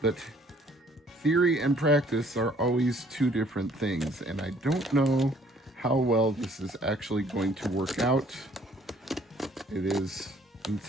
But theory and practice are always two different things, and I don't know how well this is actually going to work out. It is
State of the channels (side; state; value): both; normal; correlation 0.60